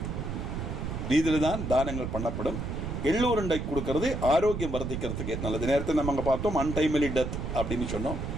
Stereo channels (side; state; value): right; noise; rumble, 4 dB below the sound